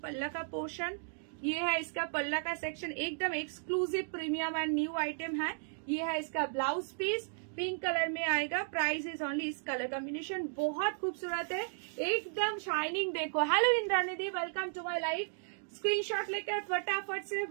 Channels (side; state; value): left; silent; digital silence